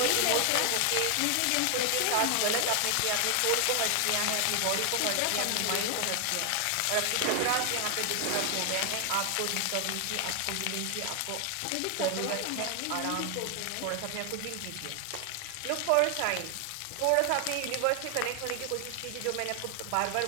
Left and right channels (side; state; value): both; different; correlation 0.00